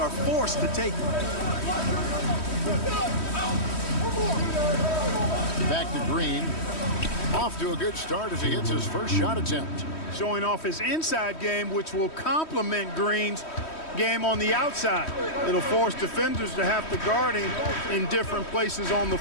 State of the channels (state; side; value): late; right; 3.1 ms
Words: forced to take it. Back to Green. Off to a good start as he hits his first shot attempt. Showing off his inside game, which will complement Green's game on the outside. It'll force defenders to have to guard him in different places on the